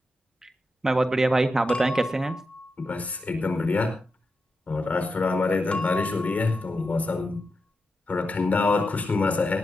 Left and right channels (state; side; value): normal; both; correlation 0.88